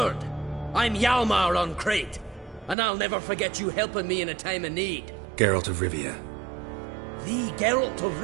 I'm Hjalmar on Crete. And I'll never forget you helping me in a time of need. Geralt of Rivia. The Geralt of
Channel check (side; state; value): left; drops out; at 2.8 s